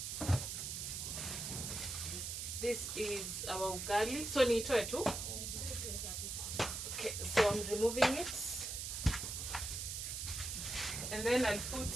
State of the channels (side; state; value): right; noise; hiss, 4 dB below the sound